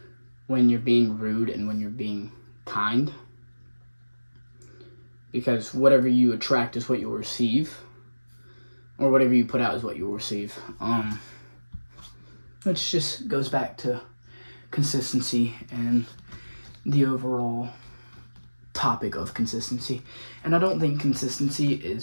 when you're being rude and when you're being kind, because whatever you attract is what you'll receive, or whatever you put out is what you'll receive. Which just goes back to consistency and the overall topic of consistency. And I don't think consistency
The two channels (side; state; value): both; inverted; correlation -1.00